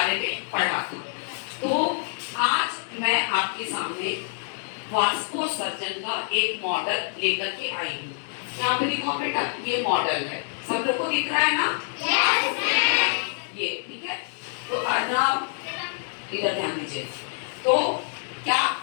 में पढ़ा था। तो आज मैं आपके सामने वाष्पोत्सर्जन का एक मॉडल लेकर के आई हूँ। यहाँ पे दिखाओ बेटा, ये मॉडल है, सब लोग को दिख रहा है ना? ये ठीक है। तो अर्नव इधर ध्यान दीजिए। तो क्या,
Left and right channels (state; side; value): silent; right; 61 dB below the other